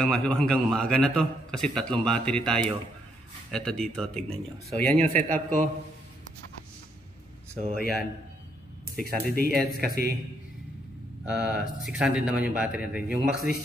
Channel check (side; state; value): both; normal; correlation 0.74